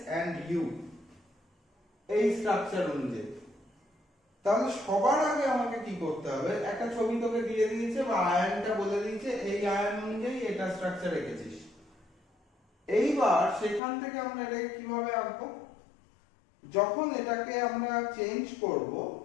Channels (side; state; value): right; drops out; at 13.8 s